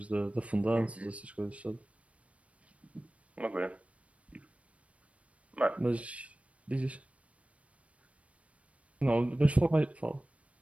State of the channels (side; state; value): left; late; 0.064 ms